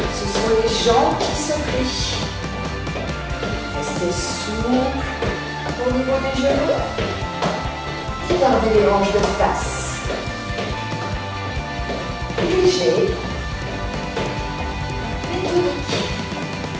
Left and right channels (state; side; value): identical; both; correlation 1.00